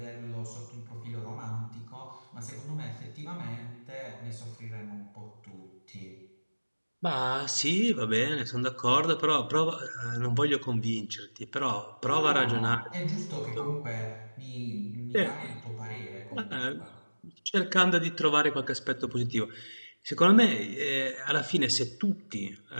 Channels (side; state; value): both; inverted; correlation -1.00